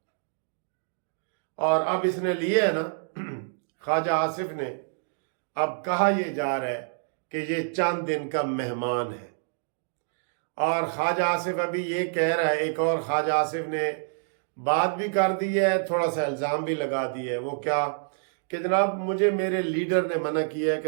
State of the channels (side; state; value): left; silent; digital silence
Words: और अब इसने लिए है ना ख्वाजा आसिफ ने, अब कहा यह जा रहा है कि ये चंद दिन का मेहमान है। और ख्वाजा आसिफ अभी ये कह रहा है, एक और ख्वाजा आसिफ ने बात भी कर दी है, थोड़ा सा इल्ज़ाम भी लगा दिया है। वो क्या कि जनाब मुझे मेरे लीडर ने मना किया है